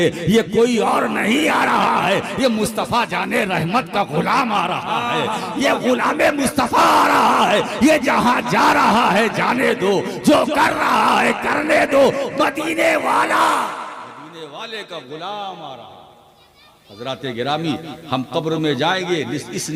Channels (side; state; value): both; identical; correlation 1.00